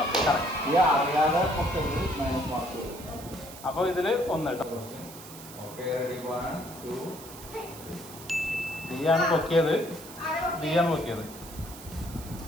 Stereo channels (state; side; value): noise; right; hiss, 16 dB below the sound